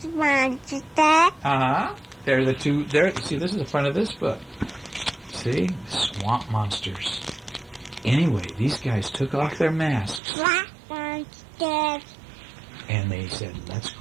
monster. They're the two. There. See, this is the front of this book. See, swamp monsters. Anyway, these guys took off their masks. Swamp monster. And they said, let's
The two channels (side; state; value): left; drops out; at 10.2 s